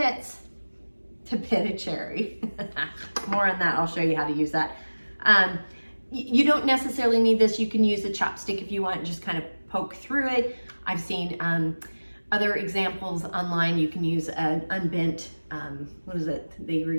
to pit a cherry. More on that. I'll show you how to use that. You don't necessarily need this. You can use a chopstick if you want and just kind of poke through it. I've seen other examples online. You can use an unbent, what is it? They were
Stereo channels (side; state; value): both; inverted; correlation -1.00